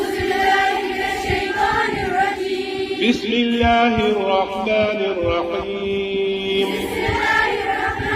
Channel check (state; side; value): identical; both; correlation 1.00